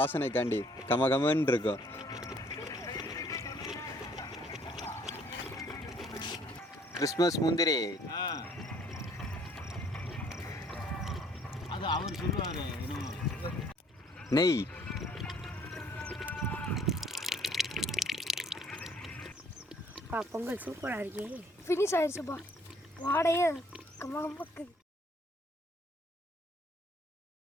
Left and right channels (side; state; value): both; normal; correlation 0.61